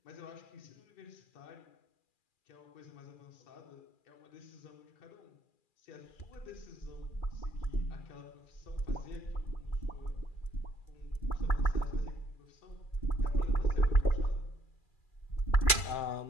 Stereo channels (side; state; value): right; late; 2.4 ms